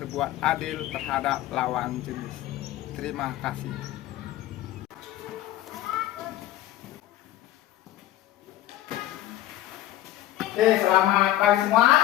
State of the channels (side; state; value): right; quieter; 14.3 dB